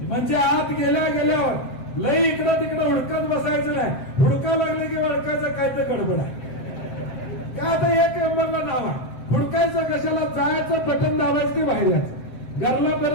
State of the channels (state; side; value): late; right; 7.7 ms